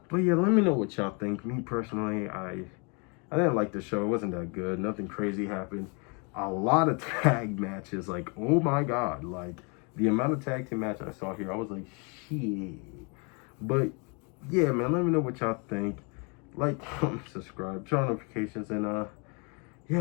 But yeah, let me know what y'all think. Me personally, I didn't like the show. It wasn't that good. Nothing crazy happened. A lot of tag matches. Like, oh my god. Like, the amount of tag team matches I saw here, I was like, shit. But yeah, man, let me know what y'all think. Like, comment, subscribe, turn on notifications, and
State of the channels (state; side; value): quieter; right; 33.5 dB